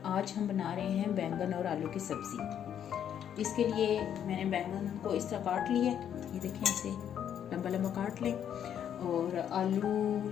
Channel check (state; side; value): quieter; right; 9.4 dB